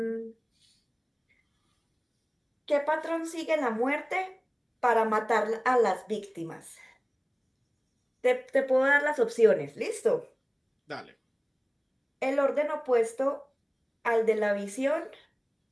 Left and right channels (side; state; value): both; identical; correlation 1.00